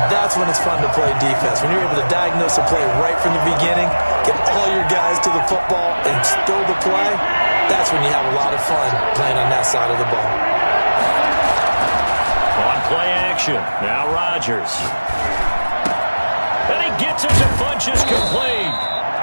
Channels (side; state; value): both; inverted; correlation -1.00